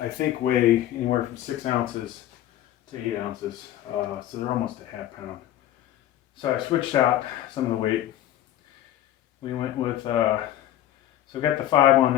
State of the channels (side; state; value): right; quieter; 12.9 dB